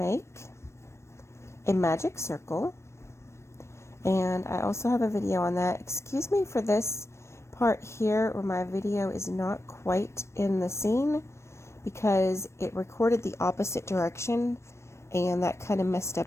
a magic circle, and I also have a video on that. Excuse me for this part here where my video is not quite in the scene, because it recorded the opposite direction and that kind of messed up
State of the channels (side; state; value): right; late; 0.13 ms